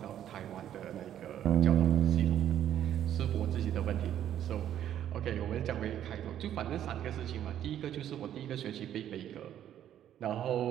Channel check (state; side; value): quieter; left; 10.8 dB